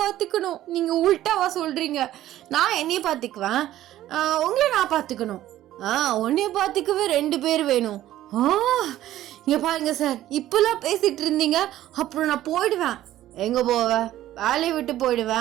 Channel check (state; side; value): quieter; left; 13.7 dB